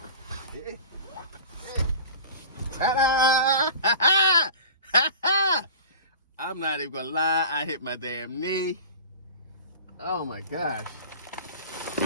Ta-da! I'm not even gonna lie, I hit my damn knee. Oh my gosh.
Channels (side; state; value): both; inverted; correlation -0.37